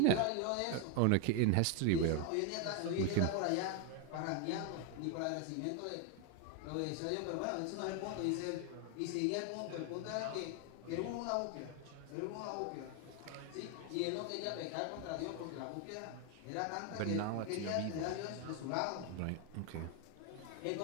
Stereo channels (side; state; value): both; different; correlation 0.01